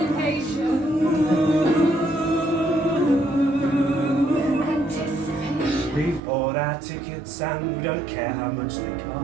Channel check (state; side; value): drops out; left; at 6.2 s